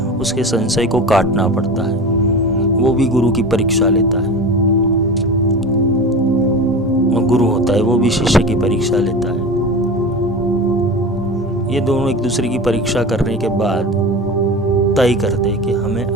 उसके संशय को काटना पड़ता है, वो भी गुरु की परीक्षा लेता है। और गुरु होता है वो भी शिष्य की परीक्षा लेता है। ये दोनों एक दूसरे की परीक्षा करने के बाद तय करते हैं कि हमें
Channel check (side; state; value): both; normal; correlation 0.30